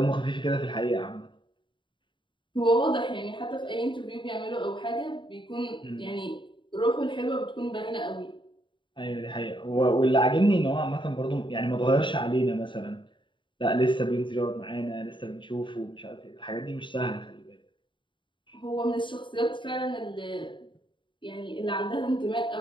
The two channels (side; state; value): right; late; 0.23 ms